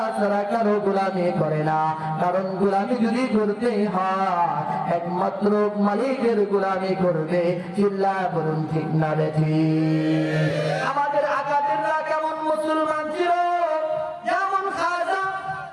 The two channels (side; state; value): both; identical; correlation 1.00